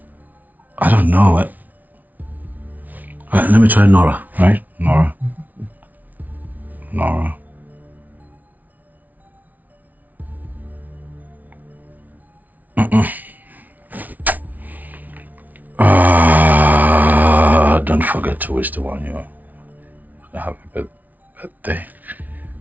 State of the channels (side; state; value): left; late; 0.077 ms